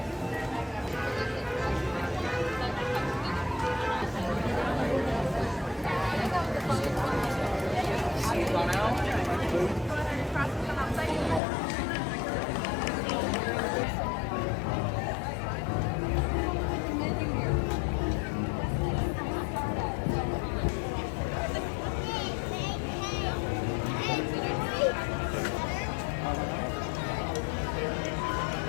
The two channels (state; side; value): drops out; right; at 11.4 s